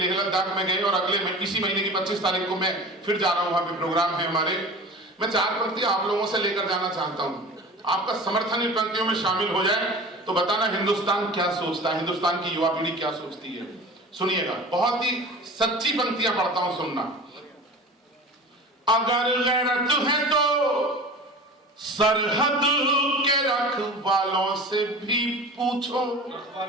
लद्दाख में गए और अगले इसी महीने की 25 तारीख को मैं फिर जा रहा हूं, वहां पे प्रोग्राम है हमारे। मैं 4 पंक्तियां आप लोगों से लेकर जाना चाहता हूं, आपका समर्थन इन पंक्तियों में शामिल हो जाए तो बताना हिंदुस्तान क्या सोचता है, हिंदुस्तान की युवा पीढ़ी क्या सोचती है। सुनिएगा, बहुत ही सच्ची पंक्तियां पढ़ता हूं, सुनना। अगर गैरत है तो सरहद के रखवालों से भी पूछो,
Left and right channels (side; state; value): both; normal; correlation 0.37